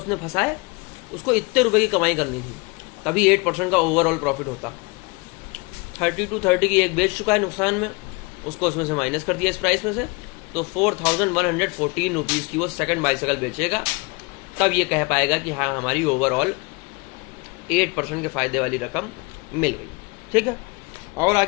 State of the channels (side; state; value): right; quieter; 28.2 dB